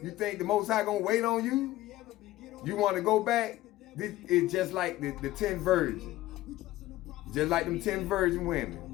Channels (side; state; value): right; quieter; 16.2 dB